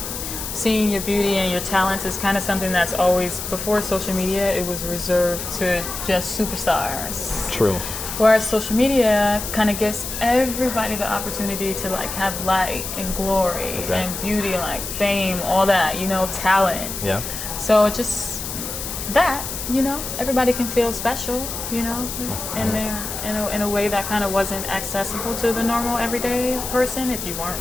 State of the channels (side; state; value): left; noise; hiss, 6 dB below the sound